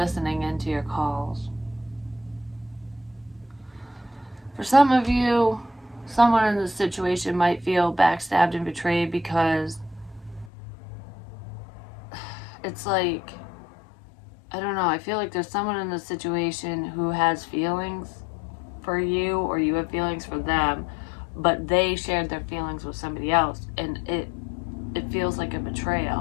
into your calls. For some of you, someone in this situation might feel backstabbed and betrayed because it's like, I don't know, I feel like there's someone in this situation who has feelings for you, or you have feelings for them, but they shared their feelings with somebody else, and it feels like a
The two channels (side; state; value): right; drops out; at 10.5 s